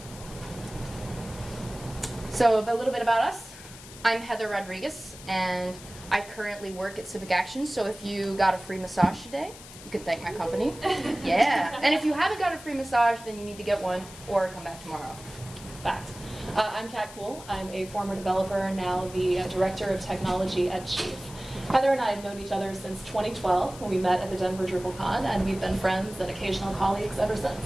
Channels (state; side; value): noise; left; hiss, 16 dB below the sound